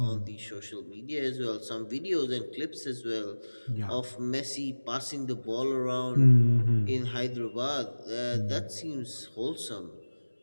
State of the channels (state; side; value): inverted; both; correlation -1.00